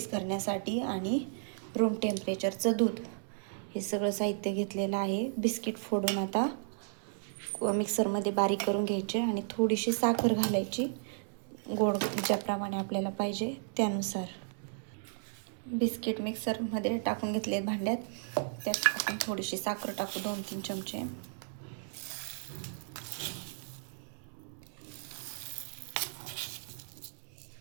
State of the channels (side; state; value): left; silent; digital silence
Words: करण्यासाठी आणि रूम टेम्परेचरचं दूध. हे सगळं साहित्य घेतलेलं आहे. बिस्किट फोडून आता मिक्सरमध्ये बारीक करून घ्यायचे आणि थोडीशी साखर घालायची, गोड ज्याप्रमाणे आपल्याला पाहिजे त्यानुसार. बिस्किट मिक्सरमध्ये टाकून घेतले भांड्यात. त्यात आपण थोडीशी साखर टाकू, 2-3 चमचे.